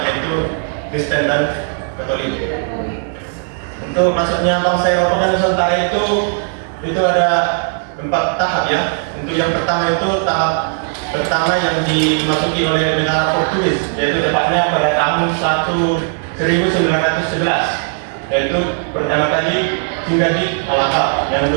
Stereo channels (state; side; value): silent; left; 61 dB below the other